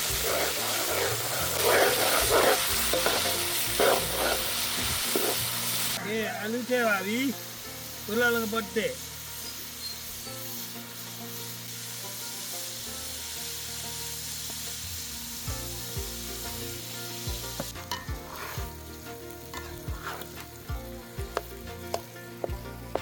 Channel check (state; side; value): identical; both; correlation 1.00